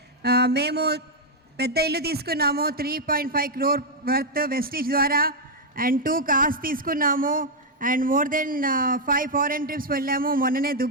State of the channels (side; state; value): both; normal; correlation -0.01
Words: మేము పెద్ద ఇల్లు తీసుకున్నాము, 3.5 crore వర్త్ వెస్టీజ్ ద్వారా, అండ్ 2 cars తీసుకున్నాము, and more than 5 foreign trips వెళ్ళాము. మొన్ననే